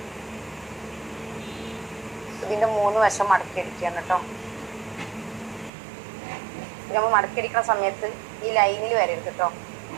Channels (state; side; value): drops out; left; at 5.7 s